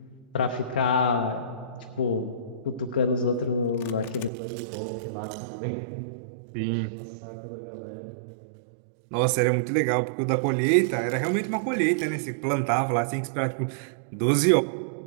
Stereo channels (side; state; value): left; drops out; at 4.3 s